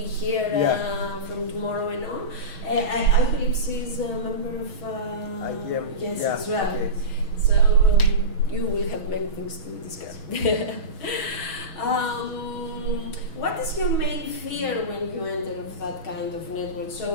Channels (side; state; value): right; late; 6.2 ms